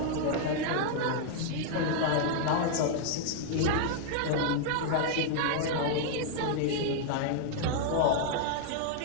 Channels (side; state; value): both; different; correlation -0.01